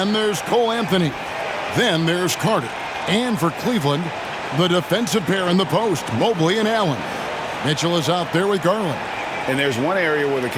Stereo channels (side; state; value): both; identical; correlation 1.00